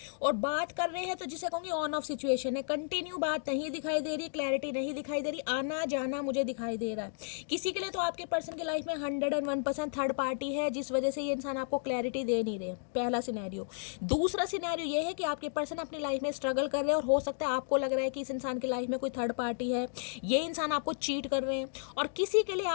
और बात कर रहे हैं तो जिसे कहूँगी ऑन ऑफ सिचुएशन है, कंटिन्यू बात नहीं दिखाई दे रही, क्लैरिटी नहीं दिखाई दे रही, आना जाना मुझे दिखाई दे रहा है। किसी के लिए तो आपके पर्सन की लाइफ में 101% थर्ड पार्टी है, जिस वजह से ये इंसान आपको क्लैरिटी दे नहीं रहे। पहला सिनेरियो। दूसरा सिनेरियो ये है कि आपके पर्सन अपनी लाइफ में स्ट्रगल कर रहे हैं, और हो सकता है आपको लग रहा है कि इस इंसान की लाइफ में कोई थर्ड पार्टी है, ये इंसान आपको चीट कर रहे हैं, और किसी के लिए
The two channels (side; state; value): right; silent; digital silence